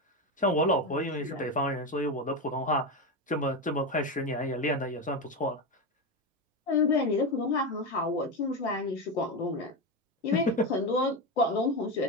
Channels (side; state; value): both; normal; correlation 0.15